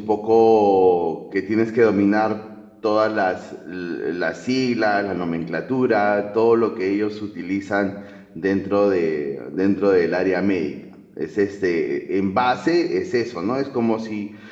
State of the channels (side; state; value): both; identical; correlation 1.00